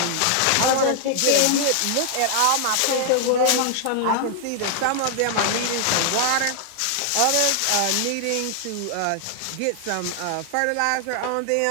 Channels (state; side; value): different; both; correlation -0.01